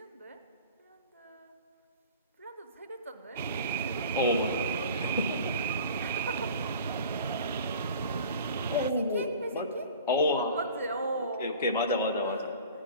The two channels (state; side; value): inverted; both; correlation -0.42